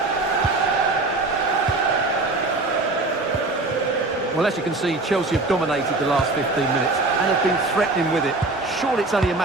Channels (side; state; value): left; quieter; 3.2 dB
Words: Well, as you can see, Chelsea have dominated the last 15 minutes and have been threatening with it. Surely it's only a